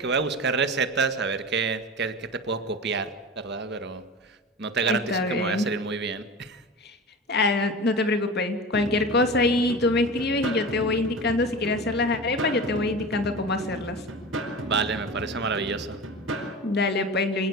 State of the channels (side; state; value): both; normal; correlation 0.31